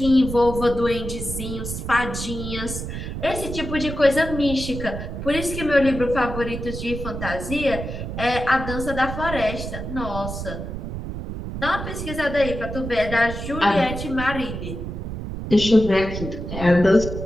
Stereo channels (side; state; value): right; noise; rumble, 7 dB below the sound